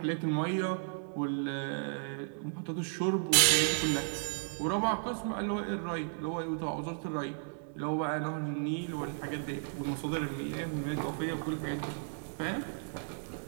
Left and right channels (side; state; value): left; silent; 55 dB below the other